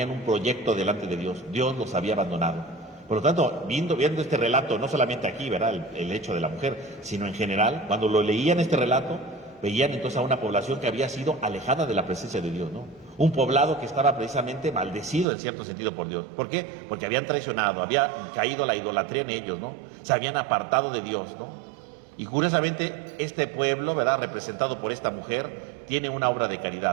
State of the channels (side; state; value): left; drops out; at 15.2 s